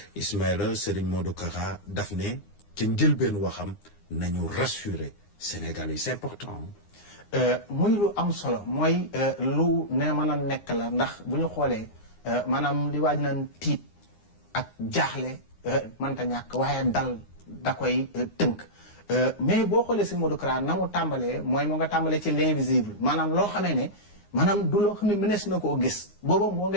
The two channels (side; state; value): right; late; 9.7 ms